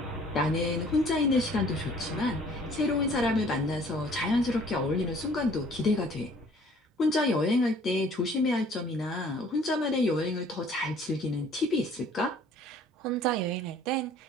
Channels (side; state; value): both; normal; correlation 0.55